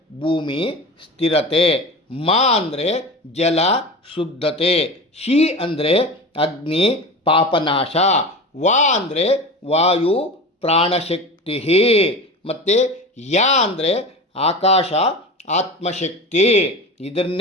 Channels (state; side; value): normal; both; correlation 0.30